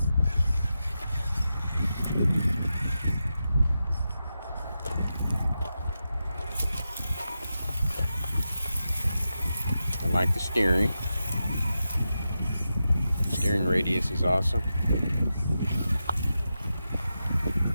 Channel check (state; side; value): inverted; both; correlation -0.90